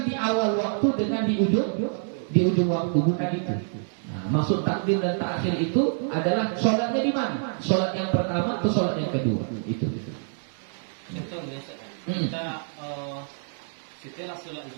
di awal waktu dengan di ujung waktu, bukan itu. Nah, maksud takdim dan takhir itu adalah sholatnya di mana? Sholat yang pertama atau sholat yang kedua? Itu. Contohnya kita setelah sholat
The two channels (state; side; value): silent; left; digital silence